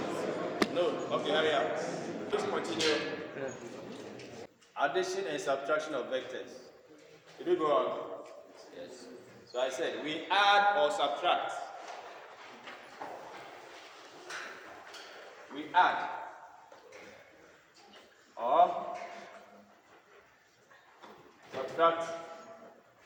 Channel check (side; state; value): both; identical; correlation 1.00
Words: No? Okay, hurry up. Please continue. Addition and subtraction of vectors. Did we go on? Yes. So I said we add or subtract. We add or subtract